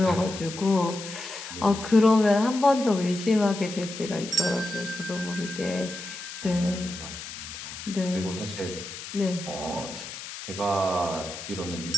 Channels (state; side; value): noise; left; hiss, 10 dB below the sound